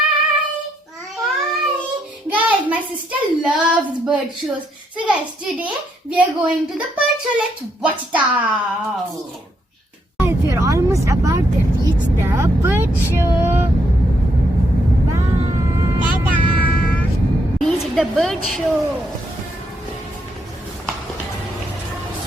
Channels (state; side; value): normal; both; correlation 0.76